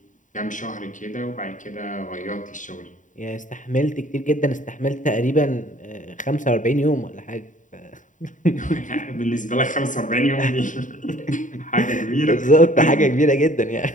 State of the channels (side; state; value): right; late; 0.37 ms